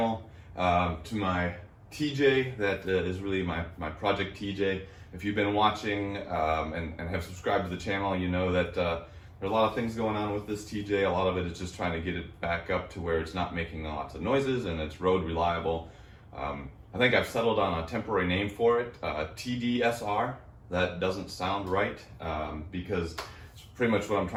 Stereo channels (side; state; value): both; identical; correlation 1.00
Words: to my TJ that is really my project TJ. If you've been watching and have subscribed to the channel, you know that there are a lot of things going on with this TJ. A lot of it is just trying to get it back up to where it's not making lots of noises and it's road reliable. I think I've settled on a temporary name for it, TDSR. That doesn't sound right because it's pretty much what I'm